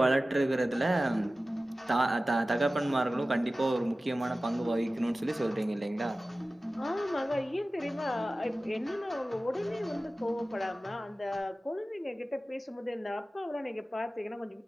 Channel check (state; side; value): normal; both; correlation 0.96